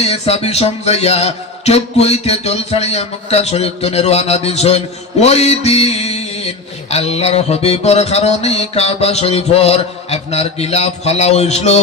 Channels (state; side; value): quieter; right; 3.3 dB